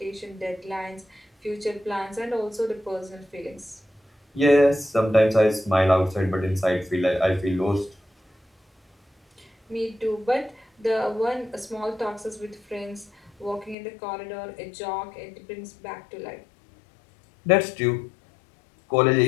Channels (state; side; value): drops out; right; at 13.8 s